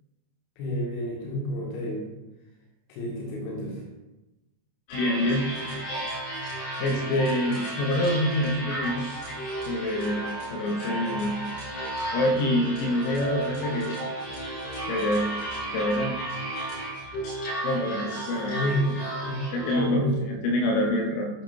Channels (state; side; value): late; right; 29 ms